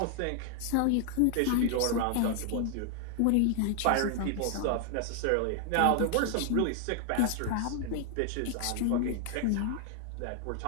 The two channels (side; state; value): both; different; correlation 0.00